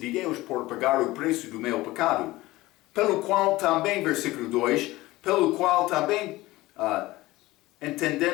Deus por pagar o preço do meu pecado. Pelo qual também, versículo 2, pelo qual também,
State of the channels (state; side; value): quieter; right; 18.7 dB